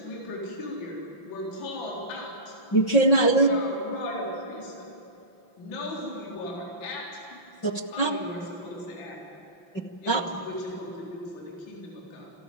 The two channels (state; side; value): late; right; 5.9 ms